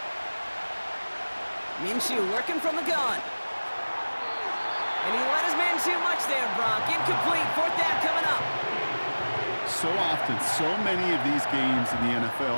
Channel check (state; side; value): inverted; both; correlation -1.00